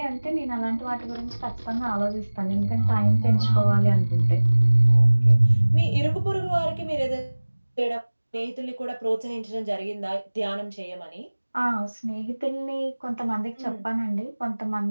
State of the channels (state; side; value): inverted; both; correlation -1.00